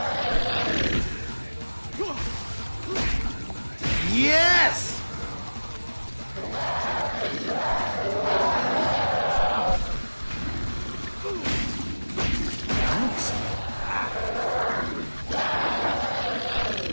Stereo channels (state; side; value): inverted; both; correlation -1.00